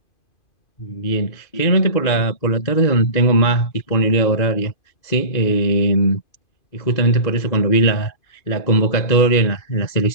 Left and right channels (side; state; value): right; late; 2.5 ms